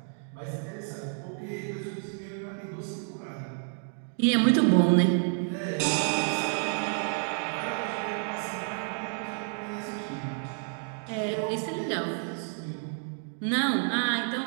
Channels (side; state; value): left; silent; 58 dB below the other